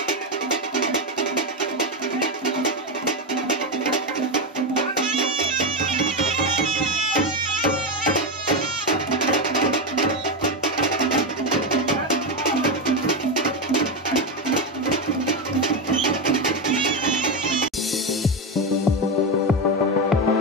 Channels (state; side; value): normal; both; correlation 0.11